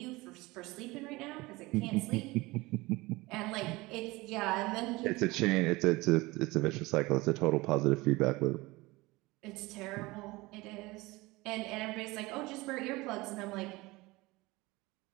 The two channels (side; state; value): left; quieter; 21.7 dB